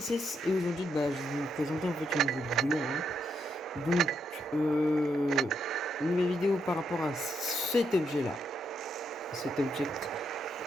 et aujourd'hui je vais vous présenter en fait une nouvelle vidéo. Donc, une nouvelle vidéo par rapport à cet objet-là. Cet object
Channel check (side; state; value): both; normal; correlation 0.79